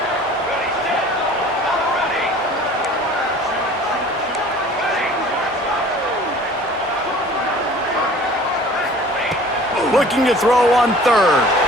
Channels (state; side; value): normal; both; correlation 0.47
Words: Looking to throw on 3rd.